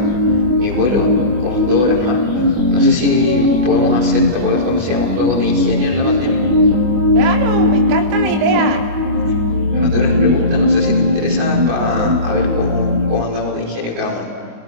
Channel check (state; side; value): late; left; 25 ms